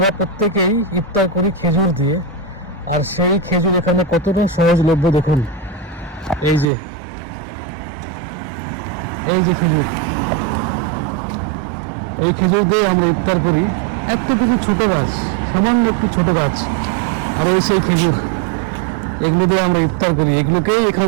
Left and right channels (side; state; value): left; drops out; at 6.7 s